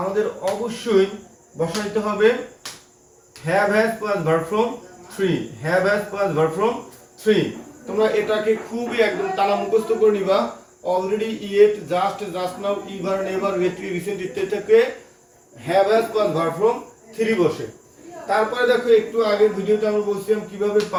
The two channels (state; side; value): identical; both; correlation 1.00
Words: অবশ্যই বসাইতে হবে have has plus verb form three, have has plus verb form three. তোমরা এটাকে খুবই একদম টানা মুখস্থ করে নিবা। Already, yet, just, just now, ever, never, lately, recent ইত্যাদি থেকে have has plus verb form three বসে। তারপরে দেখো একটু আগের ভিডিওতে আমরা বলছিলাম কিভাবে